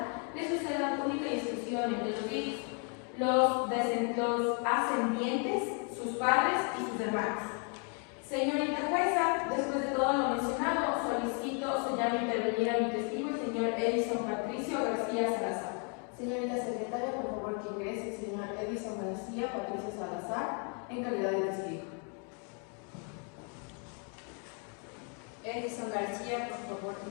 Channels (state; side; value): quieter; right; 39.5 dB